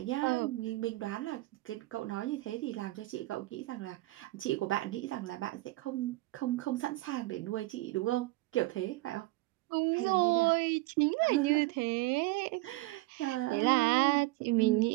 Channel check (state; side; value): quieter; left; 19.9 dB